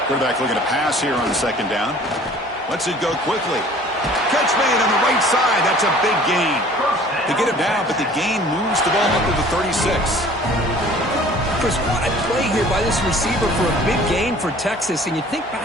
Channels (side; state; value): both; normal; correlation 0.50